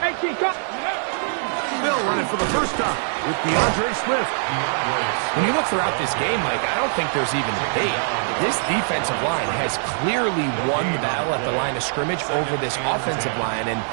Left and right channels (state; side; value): silent; left; 64 dB below the other